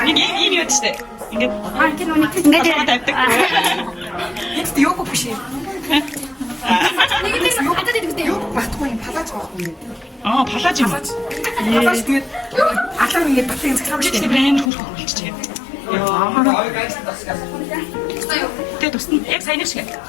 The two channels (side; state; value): right; drops out; at 14.7 s